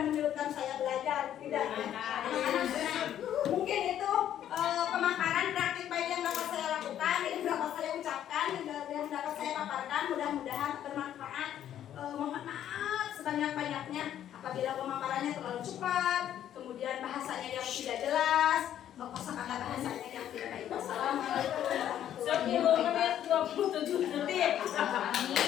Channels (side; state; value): right; quieter; 10.8 dB